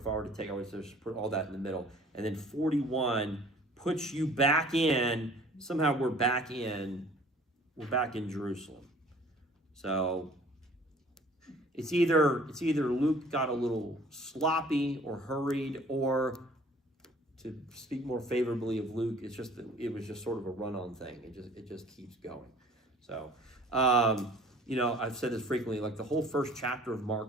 take, I would just put all that in the middle, and then 41 puts you back in. Somehow we're back in Jerusalem. So it's either Luke got a little sloppy or hurried, or, to speak more favorably of Luke, it was just sort of a run-on thing. It just keeps going. So, I've said this frequently. Like, the whole first chapter of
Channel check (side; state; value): both; normal; correlation 0.51